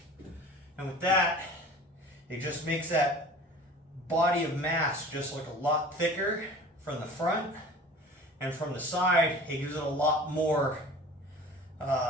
And with that, it just makes that body of mass just look a lot thicker from the front, and from the side, it gives it a lot more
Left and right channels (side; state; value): both; normal; correlation 0.42